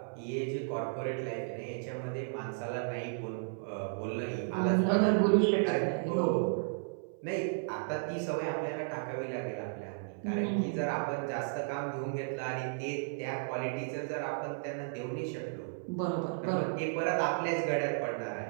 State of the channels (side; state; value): left; silent; 55 dB below the other